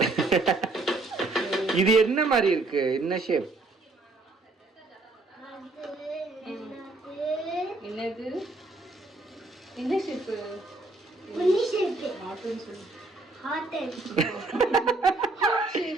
இது என்ன மாதிரி இருக்கு? என்ன ஷேப்? என்னது? என்ன ஷேப்? புள்ளி ஷேப். ஹார்ட்னு சொல்லு. ஹார்ட். Heart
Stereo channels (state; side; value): quieter; left; 3.2 dB